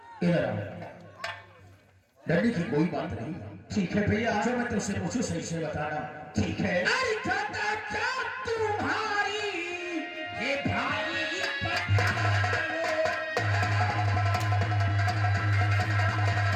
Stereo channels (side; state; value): both; identical; correlation 1.00